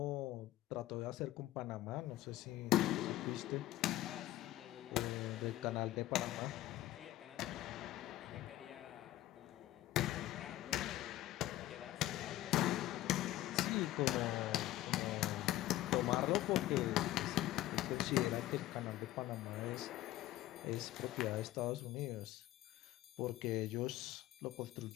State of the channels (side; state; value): right; quieter; 15.2 dB